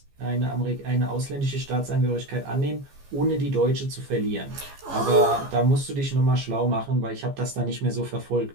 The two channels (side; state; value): left; late; 15 ms